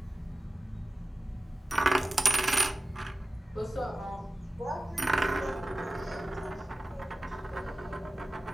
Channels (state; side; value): normal; both; correlation 0.96